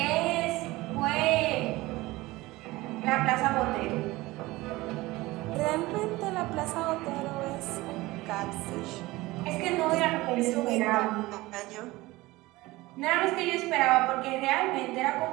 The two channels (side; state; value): left; quieter; 19.8 dB